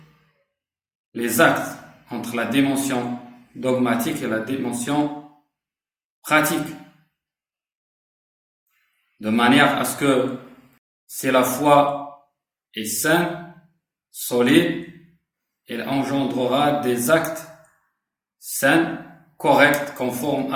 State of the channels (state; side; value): identical; both; correlation 1.00